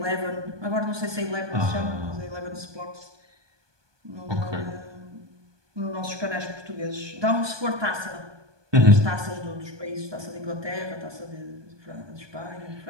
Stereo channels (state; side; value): late; left; 1.2 ms